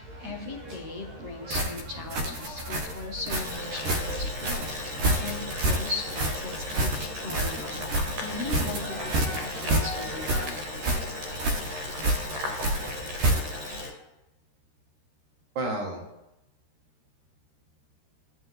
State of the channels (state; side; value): late; left; 13 ms